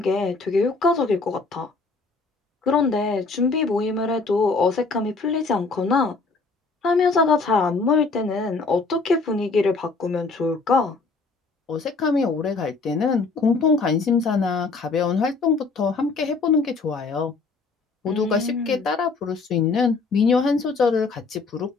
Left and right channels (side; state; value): right; quieter; 4.1 dB